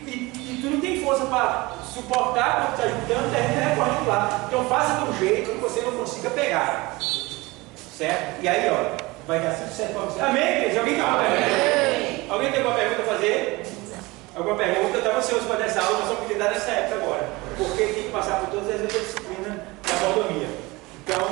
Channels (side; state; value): left; quieter; 22.5 dB